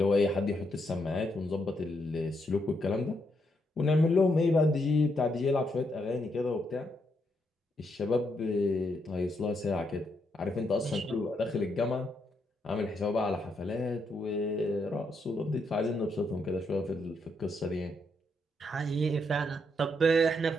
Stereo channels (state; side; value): normal; both; correlation 0.78